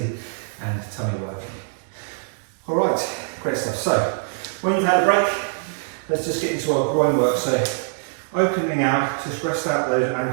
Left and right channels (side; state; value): left; silent; digital silence